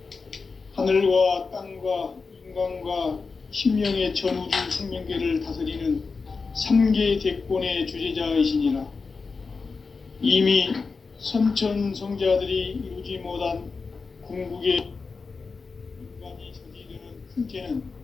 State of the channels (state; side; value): quieter; right; 4.6 dB